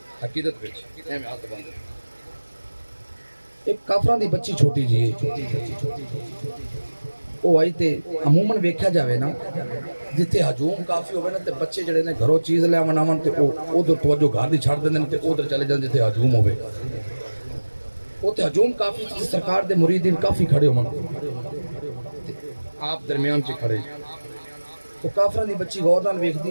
عقیدت وچ ایویں ہاتھ بند ایک کافراں دی بچی چھوٹی جی وہ آئی تے عموماً ویکھیا جاوے نا جتھے ہجوم کافی ہوئے نا تے بچے جڑے نے گھروں چیز لے آون آون تے ادھر توجہ گھر دی چھڑ دیندے تے ادھر چلے جان جتھے ہجوم ہوئے تے ہجوم کافی تے سرکار دے مریدین کافی کھڑے ہون آپ درمیان چ کھڑے تو کافراں دی بچی غور نال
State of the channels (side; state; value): both; inverted; correlation -1.00